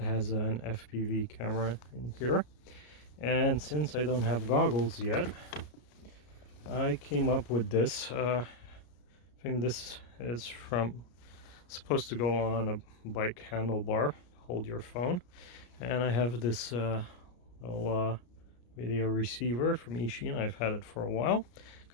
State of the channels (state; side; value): late; right; 33 ms